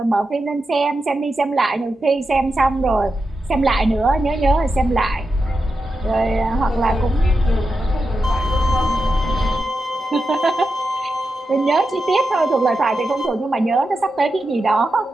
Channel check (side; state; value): both; normal; correlation 0.89